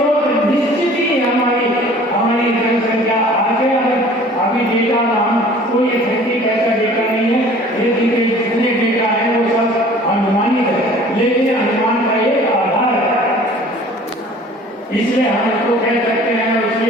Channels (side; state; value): both; normal; correlation 0.49